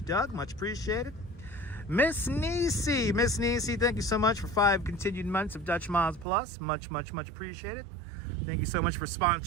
Doug. Much appreciated. Miss Nisi. Miss Nisi, thank you so much for 5 continued months of Dutch Miles Plus. Much, much, much appreciated. Thank you so much for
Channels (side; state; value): left; drops out; at 6.2 s